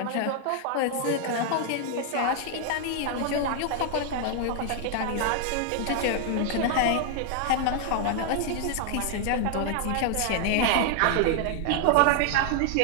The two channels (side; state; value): both; different; correlation 0.00